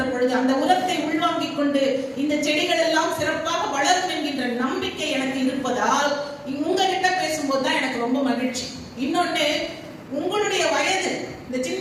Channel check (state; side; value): identical; both; correlation 1.00